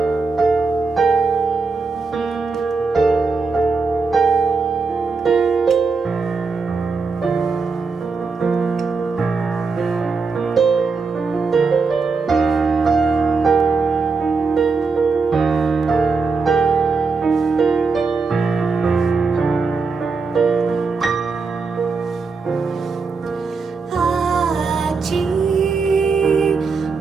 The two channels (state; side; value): quieter; left; 4.6 dB